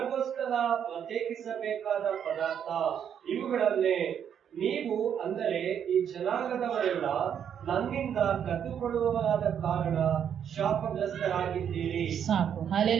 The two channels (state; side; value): quieter; left; 8.6 dB